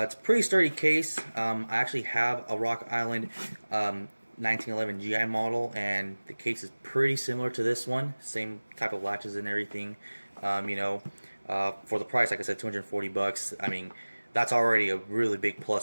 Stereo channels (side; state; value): both; inverted; correlation -1.00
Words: a pretty sturdy case. I actually have a Rock Island 1911 GI model, and the case is pretty similar to this one. Same type of latches and everything. For the price, like I said, 240 bucks. I mean, that's already a really big